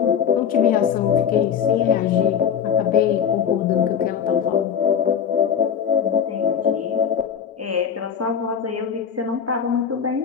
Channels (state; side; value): quieter; right; 7.9 dB